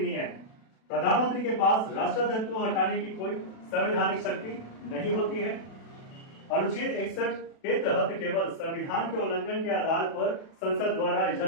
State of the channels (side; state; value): right; late; 36 ms